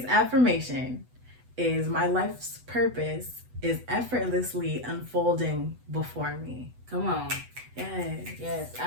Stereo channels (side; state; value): left; late; 8.0 ms